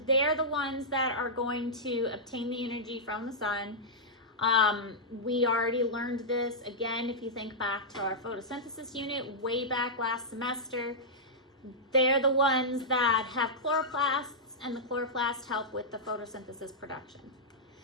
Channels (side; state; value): both; normal; correlation -0.10